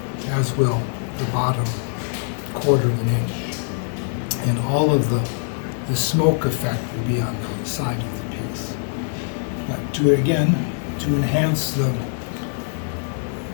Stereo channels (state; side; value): silent; right; digital silence